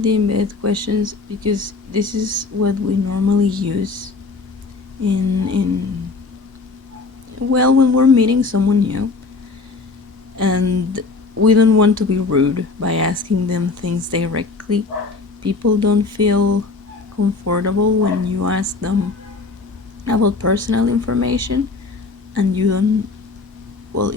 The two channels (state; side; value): quieter; right; 4.1 dB